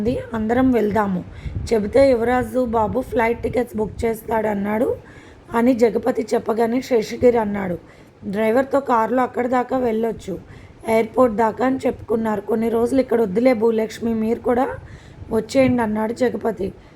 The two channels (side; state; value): both; identical; correlation 1.00